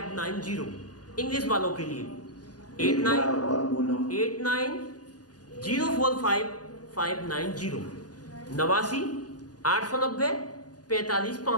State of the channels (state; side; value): late; right; 0.69 ms